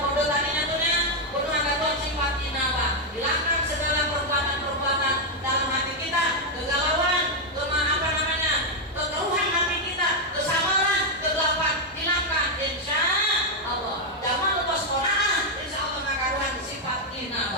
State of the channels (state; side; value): normal; both; correlation 0.01